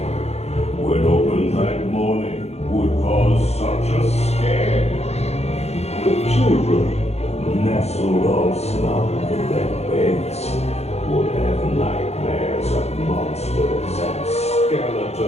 when opened that morning, would cause such a scare. The children, nestled all snug in their beds, would have nightmares of monsters and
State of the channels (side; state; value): right; late; 0.31 ms